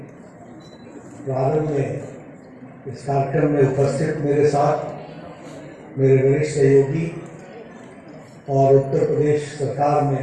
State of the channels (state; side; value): identical; both; correlation 1.00